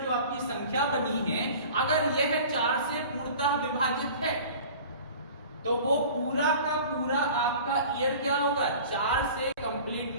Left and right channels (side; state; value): both; inverted; correlation -0.42